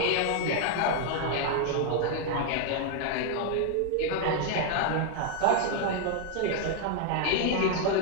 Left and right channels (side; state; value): both; different; correlation 0.00